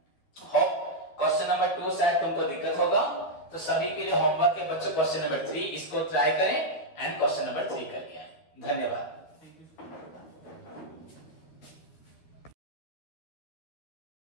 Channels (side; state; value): right; late; 12 ms